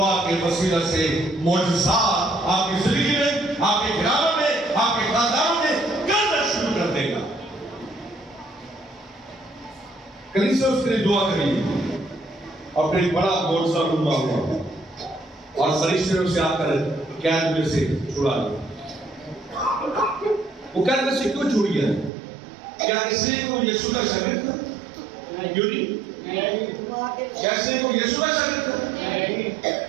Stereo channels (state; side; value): drops out; left; at 22.1 s